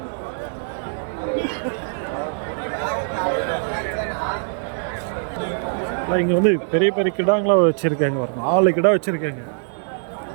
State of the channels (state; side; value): silent; left; digital silence